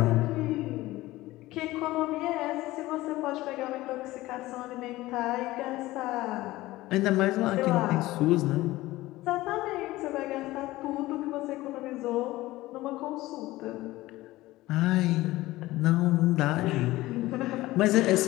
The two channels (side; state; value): right; quieter; 17.9 dB